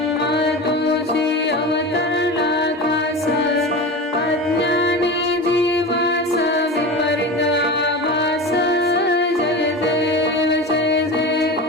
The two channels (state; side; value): normal; both; correlation 0.28